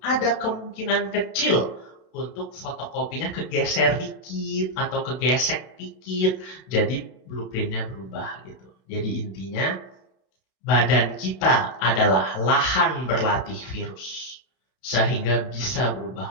ada kemungkinan kecil untuk fotokopinya kegeser dikit atau kegesek dikit. Jadi blueprintnya berubah gitu. Jadi intinya badan kita adalah lahan berlatih virus sehingga bisa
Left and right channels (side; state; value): right; late; 32 ms